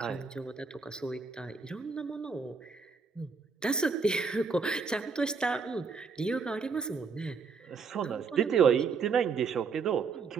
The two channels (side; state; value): left; quieter; 5.2 dB